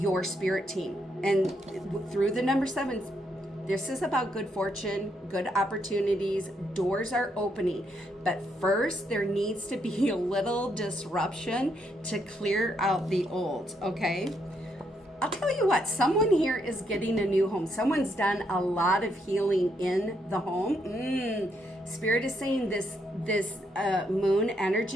spirit team. And through the number 7, this is about good fortune, good opportunities, doors are opening. But first, there needs to be a little disruption to clear out the old, okay? I'll tell you what, someone here is getting a new home. Someone's done a lot of healing in the home. Spirit is saying this moon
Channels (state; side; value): normal; both; correlation 0.76